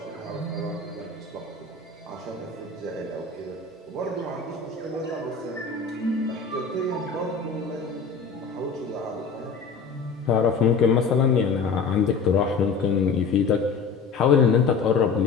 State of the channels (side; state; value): right; quieter; 5.0 dB